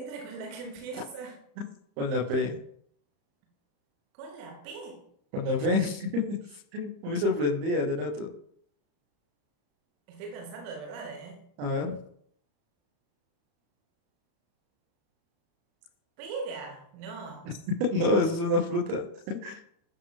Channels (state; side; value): late; left; 34 ms